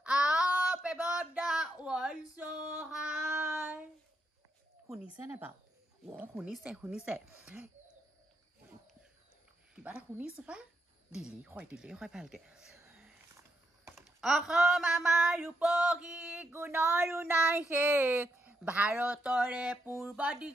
up above the world so high শুনিছে নে বাৰু শুনিছে কিবা এটা শুনিছো পা দিলি হয় ভালকে অসম আমাৰ ৰূপহী গুণৰো নাই শেষ ভাৰতৰে পূৰ্ব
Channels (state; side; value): normal; both; correlation 0.80